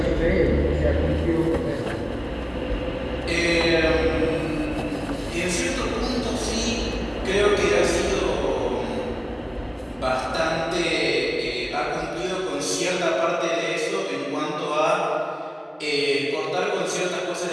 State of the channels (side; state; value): both; identical; correlation 1.00